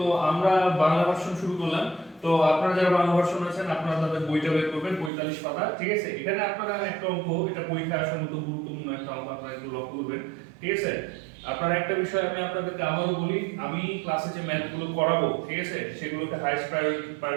আমরা বাংলা ভার্সন শুরু করলাম। তো আপনারা যারা বাংলা ভার্সন আছেন আপনারা তাদের বইটা বের করবেন, 45 পাতা। ঠিক আছে, এখানে আপনারা একটা অঙ্ক, এটা পরীক্ষায় আসার মতো গুরুত্বপূর্ণ একটা অঙ্ক, আপনারা একটু লক্ষ্য করবেন। ঠিক আছে, আপনারা একটা বিষয় আমি আপনাদেরকে আবারও বলি, আমি ক্লাসে যে ম্যাথগুলো করাবো, ঠিক আছে, সেগুলোকে হাইস্ট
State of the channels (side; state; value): left; drops out; at 5.1 s